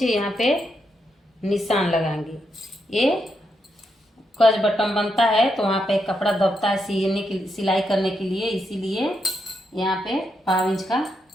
यहाँ पे निशान लगाएंगे। ये कज बटन बनता है तो वहाँ पे कपड़ा दबता है सीने की सिलाई करने के लिए, इसीलिए यहाँ पे 5 इंच का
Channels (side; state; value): both; normal; correlation 0.82